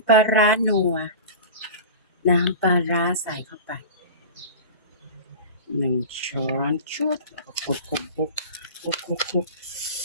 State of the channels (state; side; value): inverted; both; correlation -0.33